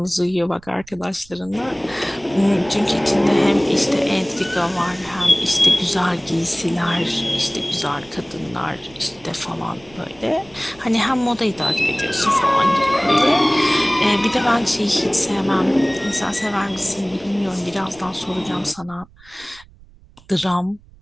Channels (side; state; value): right; noise; rumble, 26 dB below the sound